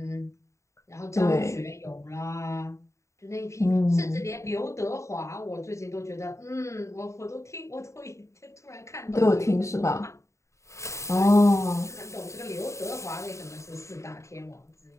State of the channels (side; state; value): right; late; 0.14 ms